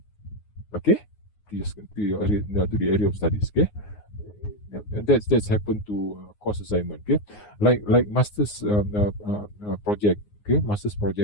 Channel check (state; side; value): late; right; 9.6 ms